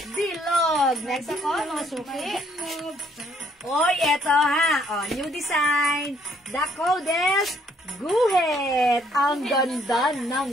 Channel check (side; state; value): both; normal; correlation 0.67